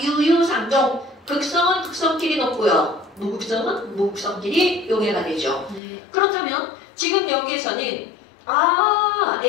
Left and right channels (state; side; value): drops out; right; at 5.8 s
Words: 유유상종. 극성은 극성끼리 높고요. 무극성은 무극성끼리 용해가 되죠. 네. 그렇다면, 지금 여기에서는,